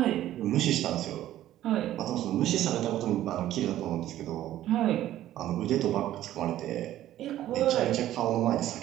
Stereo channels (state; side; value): quieter; left; 13.2 dB